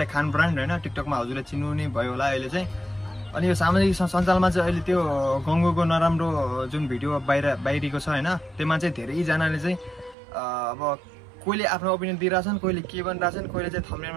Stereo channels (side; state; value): left; drops out; at 10.2 s